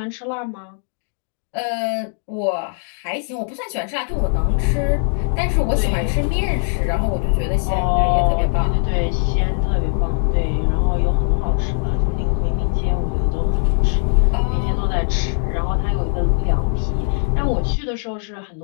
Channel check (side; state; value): right; silent; digital silence